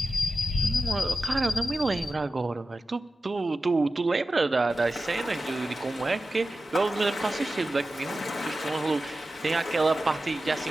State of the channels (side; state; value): both; normal; correlation 0.94